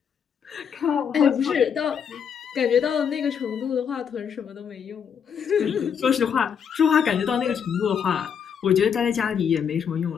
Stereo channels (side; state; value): right; quieter; 7.4 dB